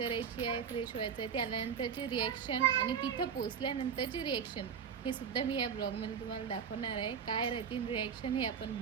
आहे, फ्रेश व्हायचं आहे. ते आल्यानंतरची रिॲक्शन आणि तिथं पोचल्यानंतरची रिॲक्शन हे सुद्धा मी या ब्लॉगमध्ये तुम्हाला दाखवणार आहे. काय राहतील रिॲक्शन हे आपण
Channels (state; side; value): quieter; left; 7.2 dB